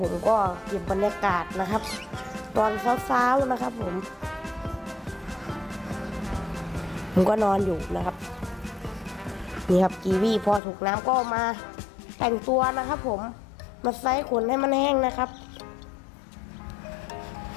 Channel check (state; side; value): drops out; right; at 10.6 s